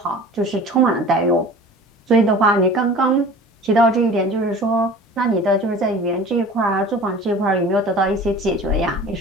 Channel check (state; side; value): normal; both; correlation 0.42